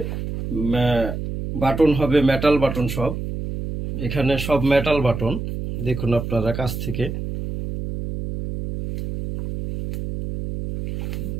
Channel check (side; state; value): right; noise; hum, 5 dB below the sound